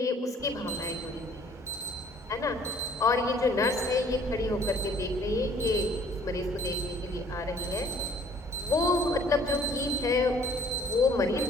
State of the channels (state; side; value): normal; both; correlation 0.57